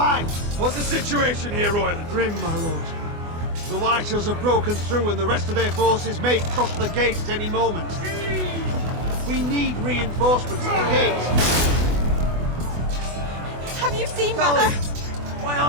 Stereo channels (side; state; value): left; late; 24 ms